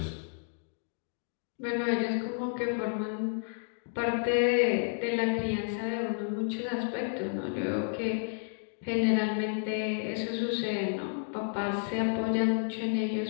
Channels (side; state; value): right; silent; digital silence